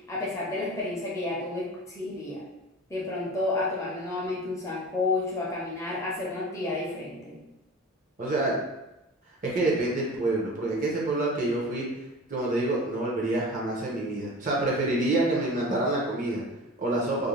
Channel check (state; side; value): normal; both; correlation 0.36